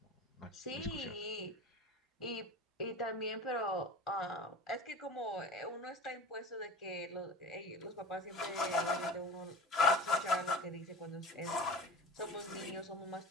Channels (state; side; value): normal; both; correlation 0.35